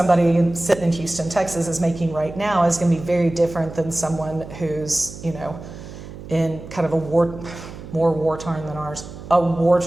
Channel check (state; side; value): noise; right; hum, 13 dB below the sound